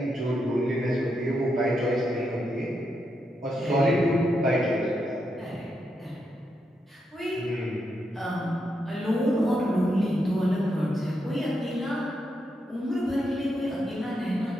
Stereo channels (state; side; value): normal; both; correlation 0.83